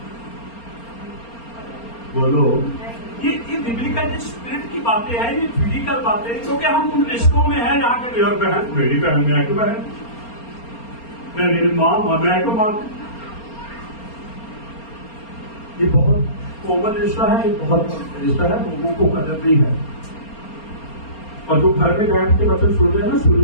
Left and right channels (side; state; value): right; late; 4.3 ms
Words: बोलो। ये बिब्लिकल स्पिरिट की बातें हैं, ये फिजिकल बातें हैं, क्योंकि हम उन रिश्तों में हैं जहाँ के मेरी बहन, मेरी बहन, मैं तो बहन, मेरी माँ, मैं तो माँ। ये बहुत कॉमन रिश्ता है, बहुत रिश्ता है, लोगों को कदर नहीं है। और जो घर में बैठ के वचन सुन रहे हैं ना, सुन